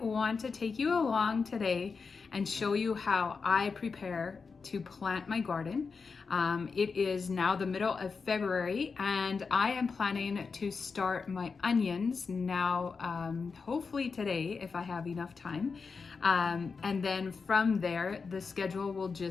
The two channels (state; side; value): quieter; right; 5.0 dB